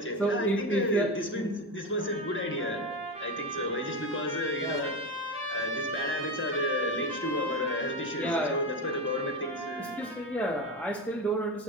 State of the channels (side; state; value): both; normal; correlation 0.18